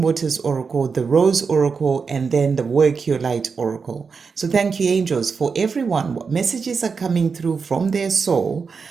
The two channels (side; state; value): left; quieter; 5.3 dB